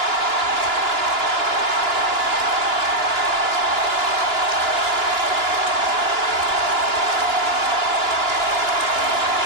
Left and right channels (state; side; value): late; left; 2.9 ms